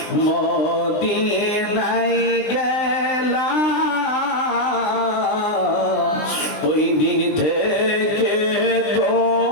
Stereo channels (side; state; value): right; late; 20 ms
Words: মদিনায় গেলাম ওই দিন থেকে